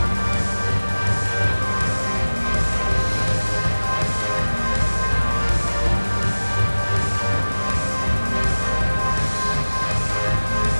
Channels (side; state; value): both; inverted; correlation -1.00